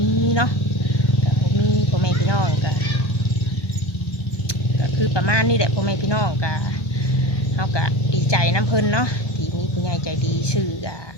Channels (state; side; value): late; right; 1.2 ms